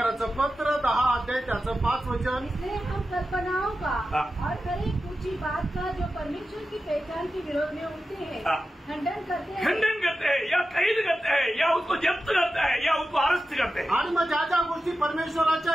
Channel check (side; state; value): both; normal; correlation 0.92